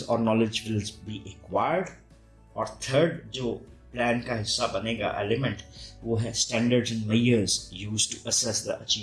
और नॉलेज विल बी एक्वायर्ड. और थर्ड जो प्लान का हिस्सा बनेगा एलिमेंट वो है standards and measures used to assess the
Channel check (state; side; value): identical; both; correlation 1.00